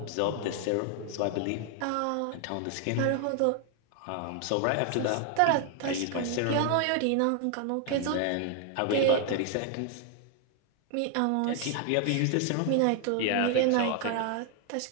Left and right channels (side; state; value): both; different; correlation 0.00